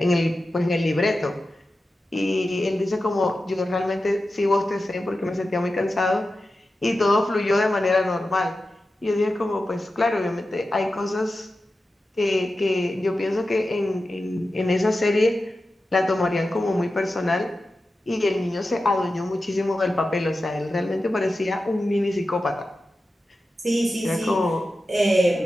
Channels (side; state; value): both; normal; correlation 0.92